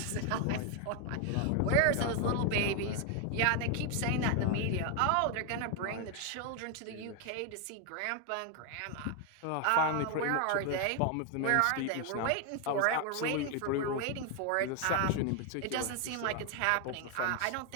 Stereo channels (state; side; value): different; both; correlation 0.01